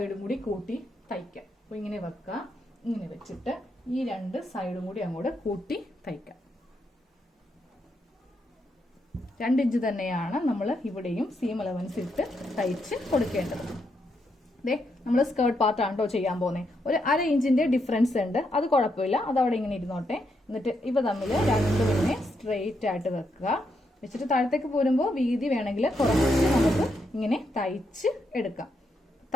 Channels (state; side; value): normal; both; correlation 0.80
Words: കൂടി കൂട്ടി തയ്ക്കാം. അപ്പൊ ഇങ്ങനെ വെക്കുക. ഇങ്ങനെ വെച്ചിട്ട് ഈ 2 സൈഡും കൂടി അങ്ങോട്ട് കൂട്ടി തയ്ക്കാം. 2 ഇഞ്ച് തന്നെയാണ് നമ്മൾ ഇവിടെയും സീം അലവൻസ് ഇട്ട് തയ്ച്ച് കൊടുക്കേണ്ടത്. ദേ നമ്മൾ സ്കേർട്ട് പാർട്ടാണ് കേട്ടോ ചെയ്യാൻ പോകുന്നത്. ഒരു 1/2 ഇഞ്ചിന്റെ ഡിഫറൻസ് ഉണ്ട്, അത് കുഴപ്പമില്ല, അതവിടെ ഇങ്ങനെ ഇരുന്നോട്ടെ. എന്നിട്ട് ഇവ തമ്മിൽ 2 ഇങ്ങനെ സ്ട്രെയിറ്റ് ആയിട്ട് വെക്കുക. വെച്ചിട്ട് താഴത്തേക്ക് പോരുമ്പോൾ വീതി വേണമെങ്കിൽ കുറച്ച് നമുക്ക് ഇങ്ങനെ തയ്ച്ച് എടുക്കാം.